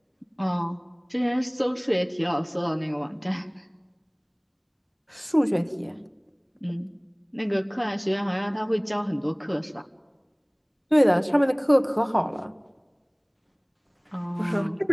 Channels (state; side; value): identical; both; correlation 1.00